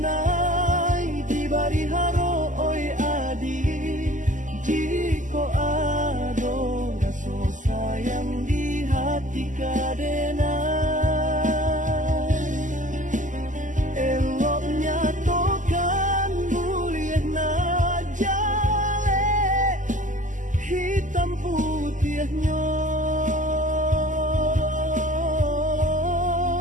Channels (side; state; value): left; late; 0.37 ms